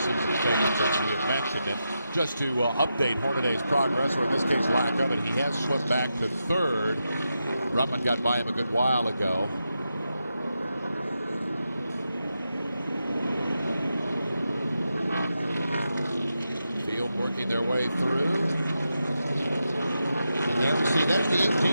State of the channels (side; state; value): both; inverted; correlation -0.87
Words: favorites, as we have mentioned. And just to update Hornaday's progress, or in this case lack of it, he has slipped back to 3rd. Ruttman got by him a good while ago. Field working their way through. Yeah, see, there's the